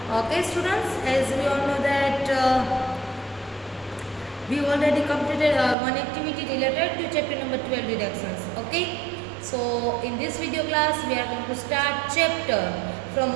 Okay students, as we all know that we already completed one activity related to chapter number 12 deductions. Okay, so in this video class we are going to start chapter from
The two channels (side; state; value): left; drops out; at 5.8 s